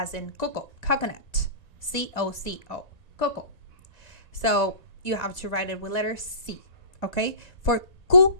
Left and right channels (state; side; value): late; right; 1.9 ms